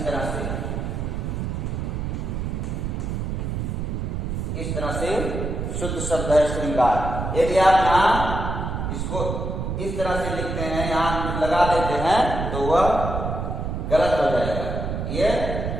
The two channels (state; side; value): noise; right; rumble, 3 dB below the sound